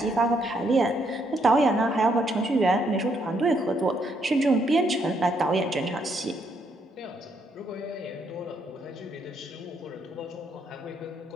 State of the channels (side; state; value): both; normal; correlation 0.73